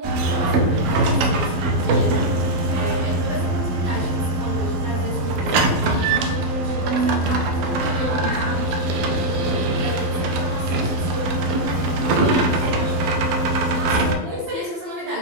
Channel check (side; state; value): left; late; 12 ms